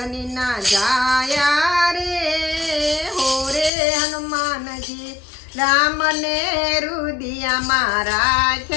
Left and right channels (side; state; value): right; drops out; at 3.7 s